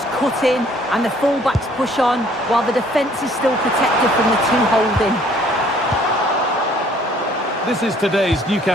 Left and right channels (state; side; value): normal; both; correlation 0.59